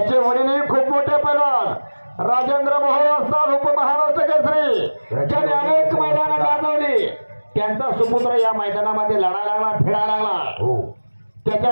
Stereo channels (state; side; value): inverted; both; correlation -1.00